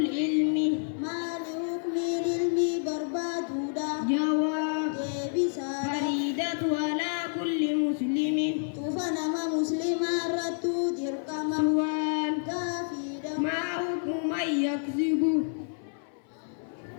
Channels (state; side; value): silent; right; 56 dB below the other